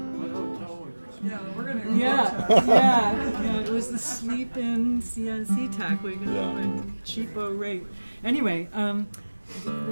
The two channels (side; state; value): both; inverted; correlation -1.00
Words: Yeah, we're gonna. Yeah. It was the sleep-in SeaTac. We got a cheapo rate. Anyway,